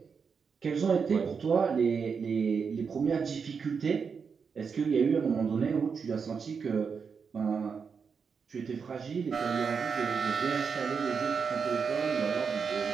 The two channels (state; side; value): quieter; left; 5.9 dB